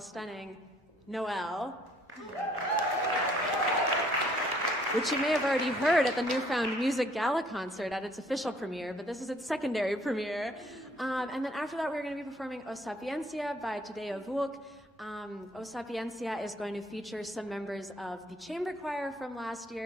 Noel, which you may have already heard at the Newfound Music Gala concert at its official premiere, but this is its secondary premiere. And then after that, we're going to be performing O Sapientia by Tadeja Vulc. O Sapientia is going to feature some members of the chamber choir from last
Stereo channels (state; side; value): normal; both; correlation 0.62